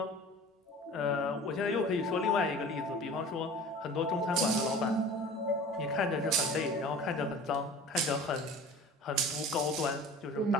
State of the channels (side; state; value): both; normal; correlation 0.41